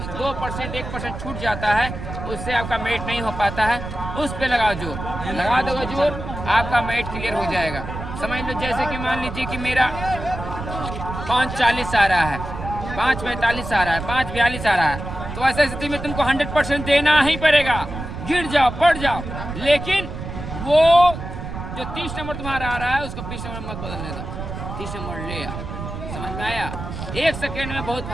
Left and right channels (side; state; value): right; noise; rumble, 8 dB below the sound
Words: 2% 1% छूट जाता है उससे आपका मेट नहीं हो पाता है, उस पे लगाओ जोर, लगा दोगे जोर आपका मेट क्लियर हो जाएगा। समझ लो जैसे कि मान लीजिए कि मेरा 5:40 आ रहा है, 5:45 आ रहा है, 5:42 आ रहा है, तो ऐसी स्थिति में तुमको 100% देना ही पड़ेगा, गिर जाओ पड़ जाओ। लेकिन वो जो 30 नंबर तुम्हारा आ रहा है उसको 20 नंबर मत बदलने दो, 30 नंबर ले आओ। समझ में आया? 1 सेकेंड में बहुत